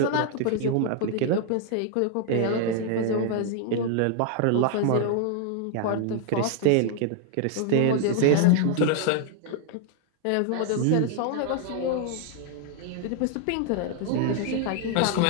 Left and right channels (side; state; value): both; different; correlation 0.00